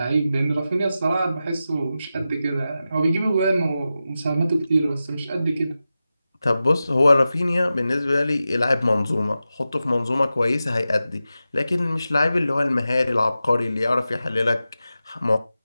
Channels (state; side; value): inverted; both; correlation -0.93